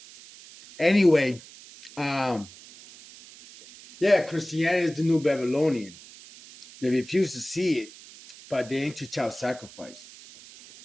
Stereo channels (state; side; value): noise; right; hiss, 19 dB below the sound